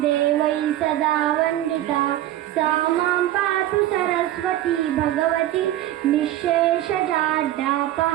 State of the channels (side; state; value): left; quieter; 13.8 dB